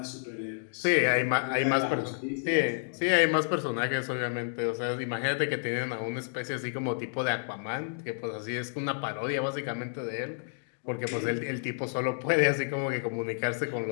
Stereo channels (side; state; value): right; silent; digital silence